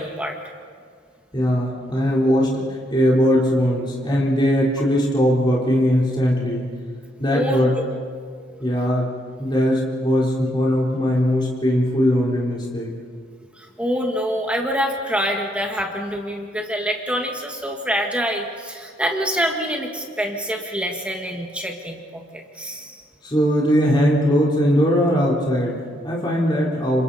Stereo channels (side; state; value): both; normal; correlation 0.75